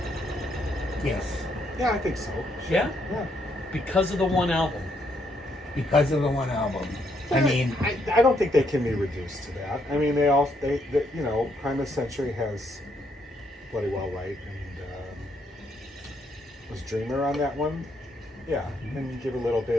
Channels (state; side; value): normal; both; correlation 0.74